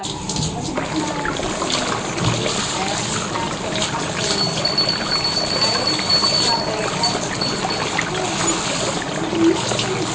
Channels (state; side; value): identical; both; correlation 1.00